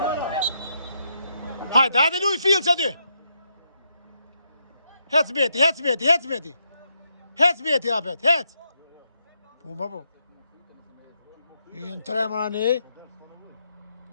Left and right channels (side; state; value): both; inverted; correlation -0.80